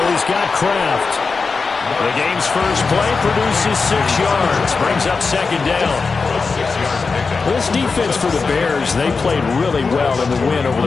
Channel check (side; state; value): right; quieter; 4.6 dB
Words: He's got Kraft. The game's first play produces 6 yards. Brings up 2nd down. This defense for the Bears, they played really well in the win over